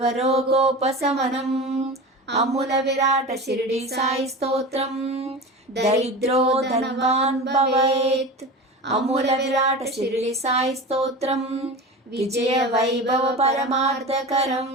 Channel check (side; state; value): both; normal; correlation 0.30